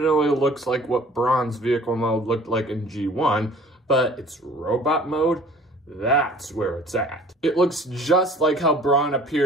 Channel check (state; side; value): normal; both; correlation 0.50